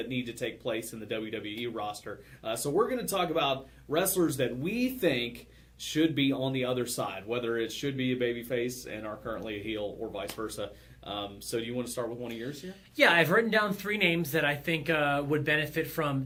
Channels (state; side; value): identical; both; correlation 1.00